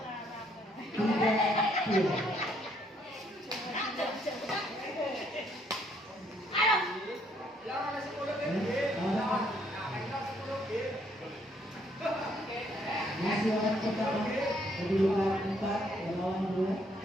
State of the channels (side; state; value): both; normal; correlation 0.69